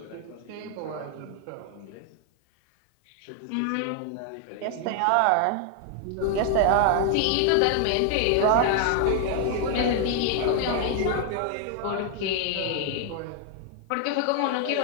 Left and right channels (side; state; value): both; different; correlation 0.00